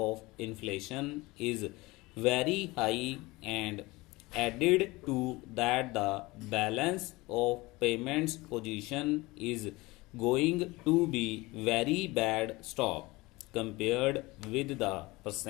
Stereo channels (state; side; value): quieter; right; 21.9 dB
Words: inflation is very high, and added to that the balance of payments position is going to be very bad stop compared with the